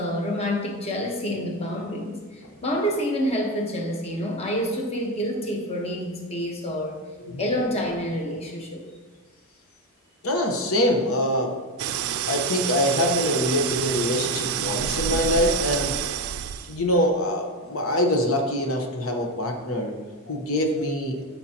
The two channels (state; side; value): normal; both; correlation 0.13